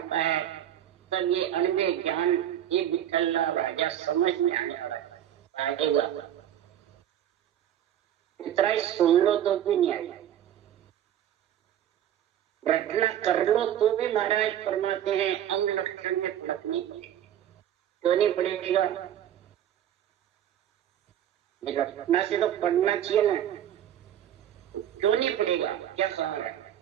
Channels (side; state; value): left; quieter; 10.8 dB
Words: है, तब ये अनवे ज्ञान ये विठल्ला राजा समझ में आने वाला आएगा। इतना ही सुन लो तो भी नहीं आएगा, रटना कर लो तो भी महाराज फरमाते हैं अंग लक्षण में फर्क नहीं पड़ेगा। क्यों नहीं पड़ेगा? रटना से तो पढ़ना चाहिए ना, क्यों नहीं पड़ेगा? क्या सवाल है?